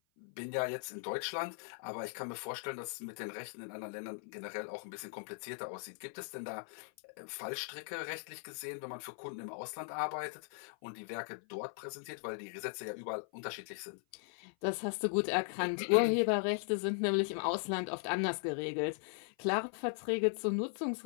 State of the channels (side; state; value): right; silent; 52 dB below the other